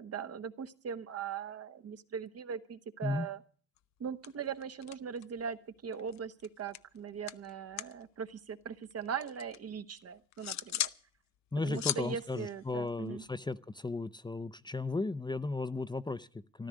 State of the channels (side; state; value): both; normal; correlation 0.41